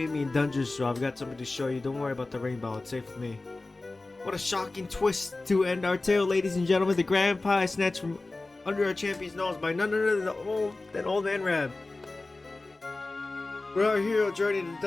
me in dungeons, so I've got something to show you. Don't worry about the rainbow. It's safe with me. What a shocking twist to end our tale, ladies and gentlemen. The grand prize snatched from under our champion's nose by none other than old man Rab. We're our hero journey to the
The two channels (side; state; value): right; quieter; 3.2 dB